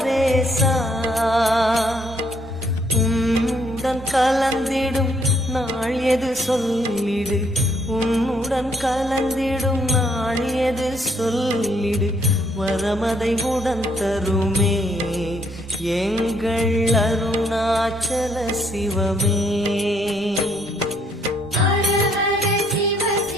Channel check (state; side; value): noise; left; rumble, 25 dB below the sound